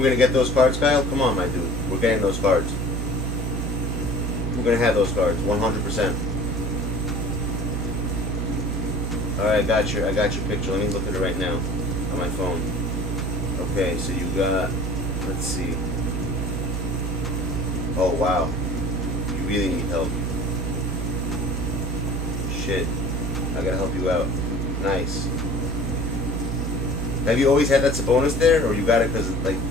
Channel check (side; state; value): both; normal; correlation 0.43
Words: gonna get those cards, Kyle? Come on, my dude. We're getting those cards. We're gonna have those cards, 100%. Alright, I got your picture. Let me look at it right now on my phone. Okay, so you got, let's see. Oh wow. You really need help. Shit. I gotta help you out. Nice. Have you always had that Sabonis there, or you got it because, like,